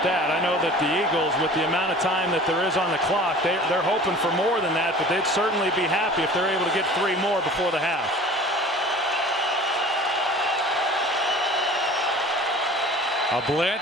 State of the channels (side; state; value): both; normal; correlation 0.43